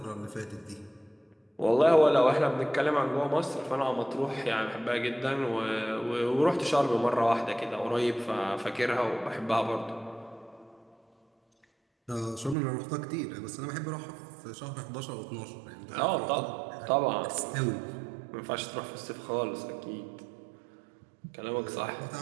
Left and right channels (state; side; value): drops out; left; at 12.6 s